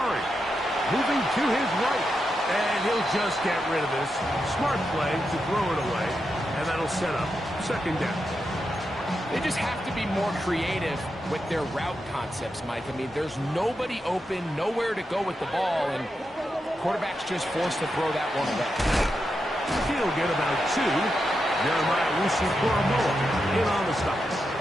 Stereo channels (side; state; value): both; normal; correlation 0.86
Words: Moving to his right. And he'll just get rid of this. Smart play to throw it away. And that'll set up second down. They just have to be more creative with their route concepts, Mike. I mean, there's nobody open, nowhere to go with the ball, and quarterback's just forced to throw that one away. He'll get about 2. Jeremiah Wusu-Koromoa in on the stop.